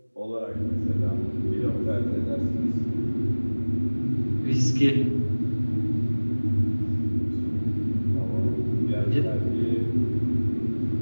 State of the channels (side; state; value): both; inverted; correlation -1.00